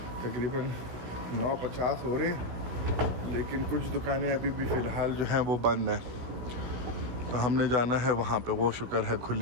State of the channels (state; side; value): late; left; 16 ms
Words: तकरीबन 9:50 हो रहे हैं, लेकिन कुछ दुकानें अभी भी फ़िलहाल जो हैं वो बंद हैं। तो हमने जाना है वहाँ पे, वो शुक्र है